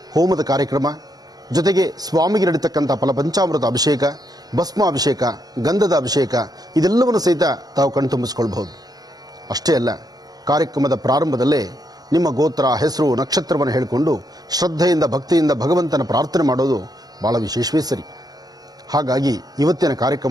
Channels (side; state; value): left; late; 0.19 ms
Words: ಹೋಮದ ಕಾರ್ಯಕ್ರಮ ಜೊತೆಗೆ ಸ್ವಾಮಿಗೆ ನಡೀತಕ್ಕಂಥ ಫಲಪಂಚಾಮೃತ ಅಭಿಷೇಕ, ಭಸ್ಮಾಭಿಷೇಕ, ಗಂಧದ ಅಭಿಷೇಕ ಇದೆಲ್ಲವನ್ನು ಸಹಿತ ತಾವು ಕಣ್ತುಂಬಿಸ್ಕೊಳ್ಬಹುದು. ಅಷ್ಟೇ ಅಲ್ಲ, ಕಾರ್ಯಕ್ರಮದ ಪ್ರಾರಂಭದಲ್ಲೇ ನಿಮ್ಮ ಗೋತ್ರ, ಹೆಸರು, ನಕ್ಷತ್ರವನ್ನು ಹೇಳಿಕೊಂಡು ಶ್ರದ್ಧೆಯಿಂದ ಭಕ್ತಿಯಿಂದ ಭಗವಂತನ ಪ್ರಾರ್ಥನೆ ಮಾಡೋದು ಬಹಳ ವಿಶೇಷವೇ ಸರಿ. ಹಾಗಾಗಿ ಇವತ್ತಿನ